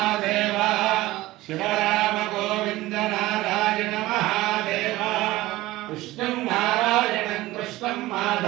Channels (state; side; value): quieter; left; 17.9 dB